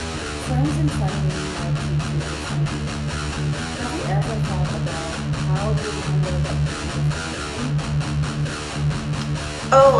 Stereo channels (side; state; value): both; identical; correlation 1.00